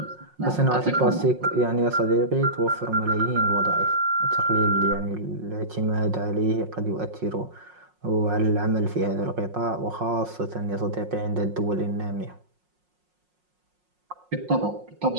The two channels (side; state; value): left; late; 5.5 ms